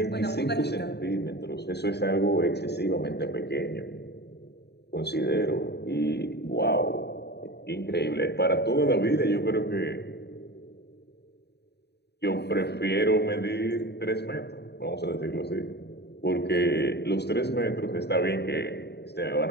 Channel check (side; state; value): right; late; 0.48 ms